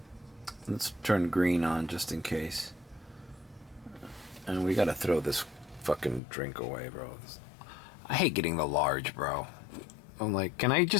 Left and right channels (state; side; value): drops out; right; at 6.2 s